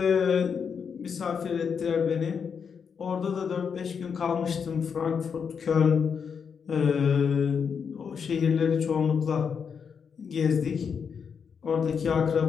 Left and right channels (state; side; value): quieter; right; 6.5 dB